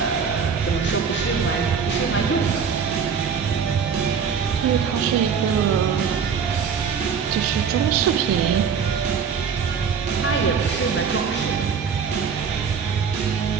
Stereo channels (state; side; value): quieter; left; 6.5 dB